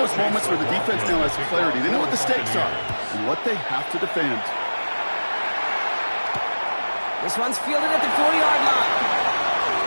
those moments where the defense now has clarity. They know what the stakes are and what they have to defend. This one's fielded at the 4-yard line.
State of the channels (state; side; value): inverted; both; correlation -1.00